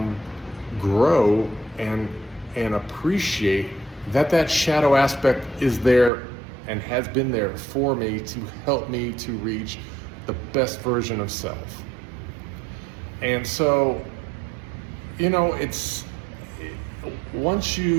grow and appreciate that shadow aspect is there and has been there for me to help me to reach the best version of self. And so, once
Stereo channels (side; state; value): left; drops out; at 6.1 s